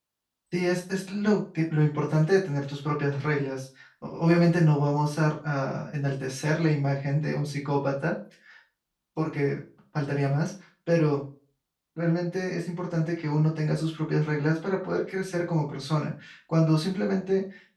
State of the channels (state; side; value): identical; both; correlation 1.00